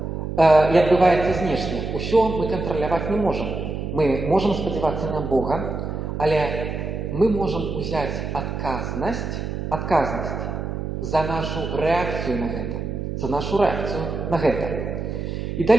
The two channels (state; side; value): noise; right; hum, 4 dB below the sound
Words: и отбывается знешне. Усё мы контролировать не можем. Мы можем сподеваться на Бога, але мы можем взять отказность за нашу реакцию на это. И